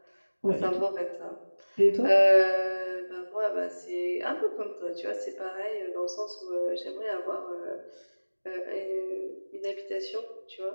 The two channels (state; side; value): inverted; both; correlation -1.00